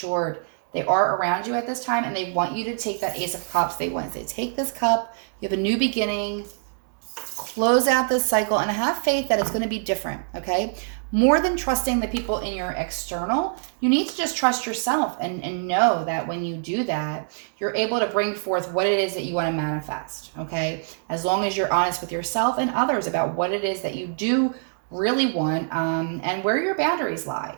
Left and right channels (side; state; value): left; silent; digital silence